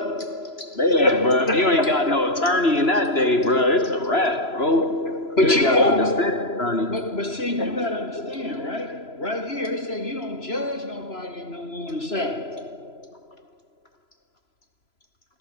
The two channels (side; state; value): right; late; 3.0 ms